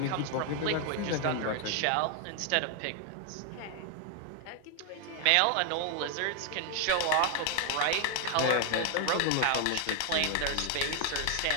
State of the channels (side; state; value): both; different; correlation 0.00